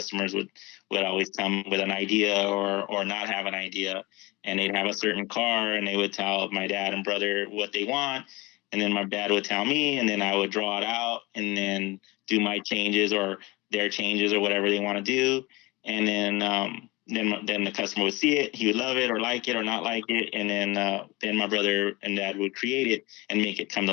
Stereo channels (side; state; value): right; quieter; 23.1 dB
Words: would always come with an idea or not have an idea, and they'd have a certain car, and they would tell my dad and brother what they want, and then my dad would tell me, and then I would draw it out and then do my changes or their changes or whatever they want to do. And then the customer would see it, he would love it or like it or not like it, and then my brother and dad would create it and make it come to